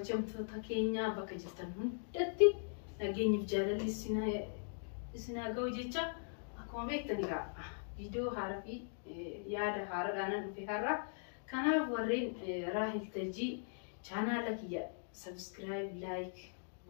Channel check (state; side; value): silent; right; digital silence